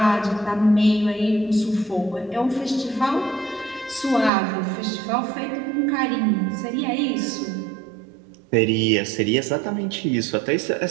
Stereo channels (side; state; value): left; drops out; at 4.3 s